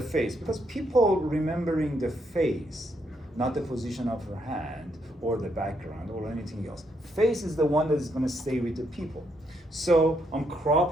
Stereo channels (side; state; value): both; normal; correlation 0.76